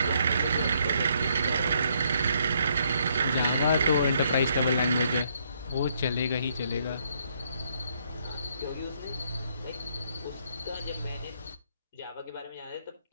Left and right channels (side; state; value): both; inverted; correlation -0.70